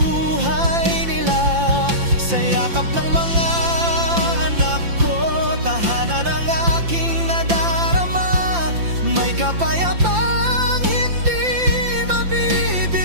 nila. Sa yakap ng mga anak ko, tahanan ng aking nadarama, may kapayapang hindi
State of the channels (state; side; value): late; left; 5.8 ms